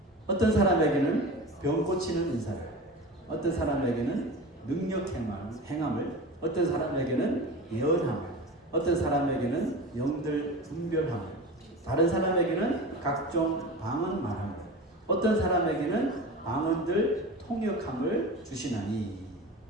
어떤 사람에게는 병 고치는 은사를, 어떤 사람에게는 능력 행함을, 어떤 사람에게는 예언함을, 어떤 사람에게는 영들 분별함을, 다른 사람에게는 각종 방언 말함을, 어떤 사람에게는 방언들 통역함을 주시나니.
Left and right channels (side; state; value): both; normal; correlation 0.31